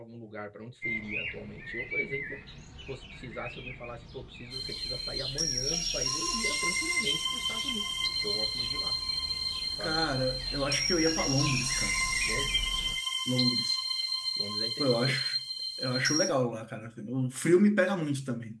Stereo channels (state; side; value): identical; both; correlation 1.00